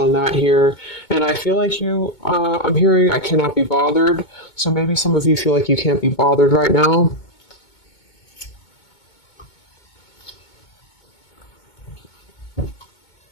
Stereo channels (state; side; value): late; right; 2.2 ms